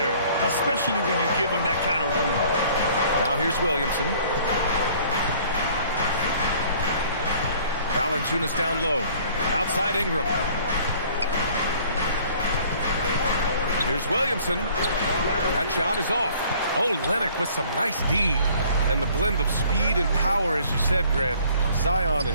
especially when you give him that kind of room. Now here's Williamson. Valanciunas down low. Outside Ingram. Here's Williamson. That shot is off. Oh, Lennox with some nice D. And the blend of speed and power, as you said, Grant, Zion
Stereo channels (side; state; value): both; inverted; correlation -0.55